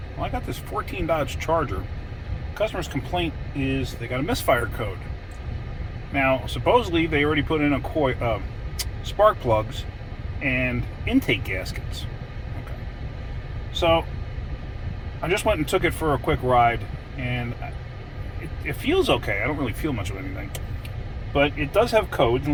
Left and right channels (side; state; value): both; identical; correlation 1.00